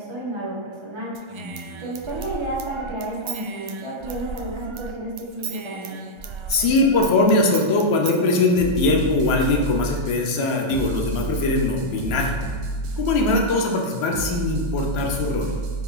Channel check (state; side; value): late; left; 1.3 ms